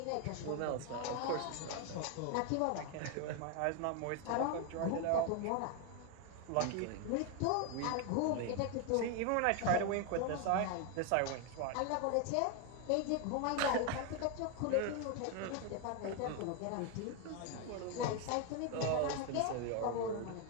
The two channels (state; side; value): different; both; correlation 0.01